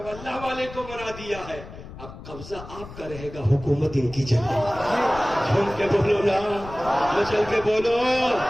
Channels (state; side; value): noise; left; rumble, 14 dB below the sound